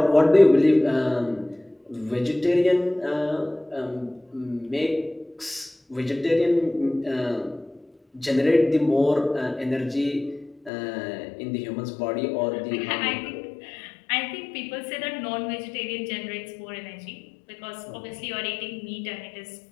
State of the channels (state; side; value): drops out; right; at 10.7 s